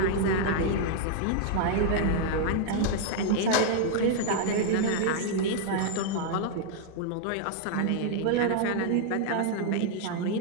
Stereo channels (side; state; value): both; different; correlation 0.00